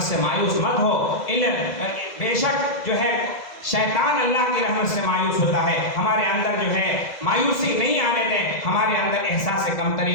سے مایوس مت ہو۔ بے شک جو ہے شیطان اللہ کی رحمت سے مایوس ہوتا ہے، ہمارے اندر جو ہے مایوسی نہیں آنے دیں، ہمارے اندر احساس کمتری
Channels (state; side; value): late; right; 1.7 ms